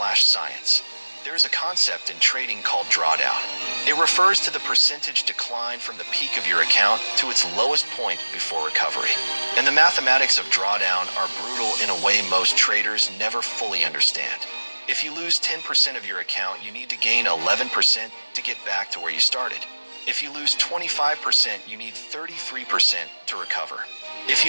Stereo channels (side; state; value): both; inverted; correlation -1.00